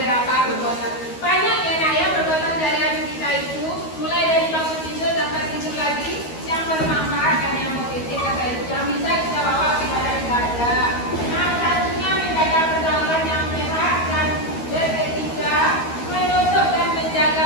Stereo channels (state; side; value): late; right; 13 ms